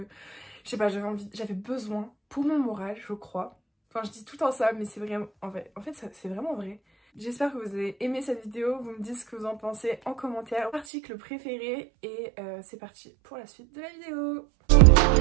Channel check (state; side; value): drops out; left; at 10.9 s